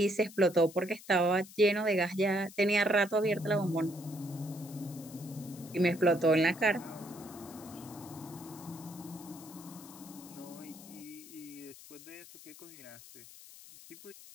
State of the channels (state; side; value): noise; left; hiss, 18 dB below the sound